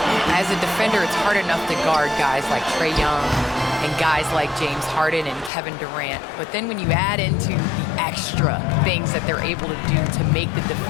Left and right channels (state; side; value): drops out; right; at 5.5 s